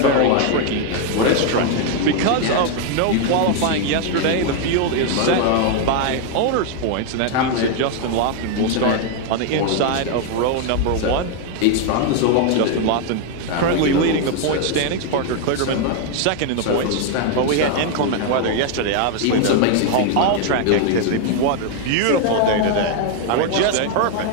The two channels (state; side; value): different; both; correlation 0.01